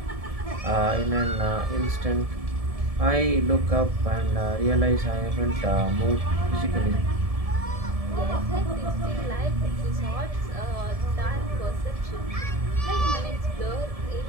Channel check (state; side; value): late; left; 1.7 ms